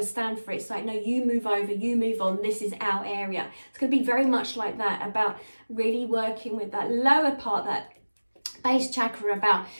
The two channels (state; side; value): inverted; both; correlation -1.00